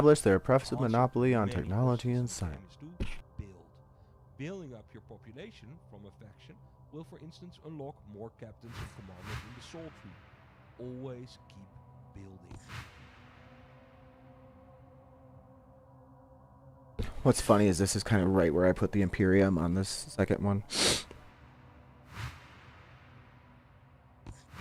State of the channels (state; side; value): identical; both; correlation 1.00